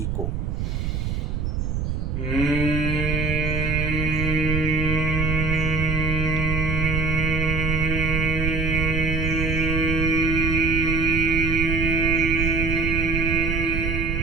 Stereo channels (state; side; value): noise; right; rumble, 1 dB below the sound